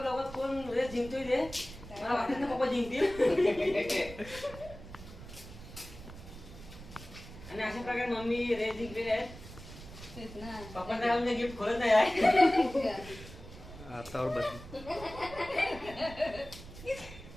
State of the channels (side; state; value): right; noise; rumble, 15 dB below the sound